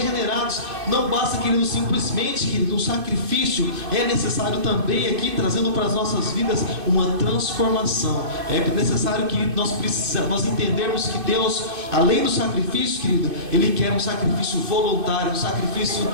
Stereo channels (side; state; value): left; late; 2.6 ms